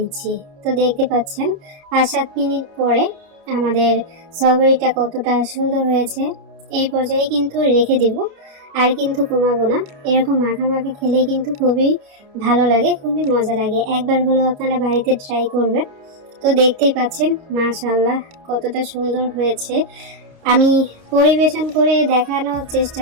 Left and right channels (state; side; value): late; left; 29 ms